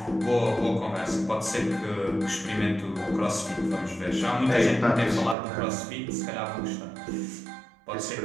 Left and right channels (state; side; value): drops out; left; at 5.4 s